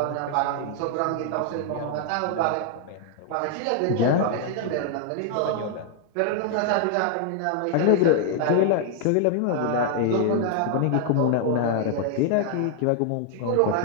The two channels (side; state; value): both; different; correlation 0.00